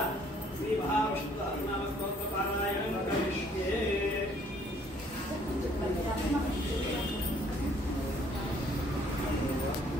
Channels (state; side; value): normal; both; correlation 0.62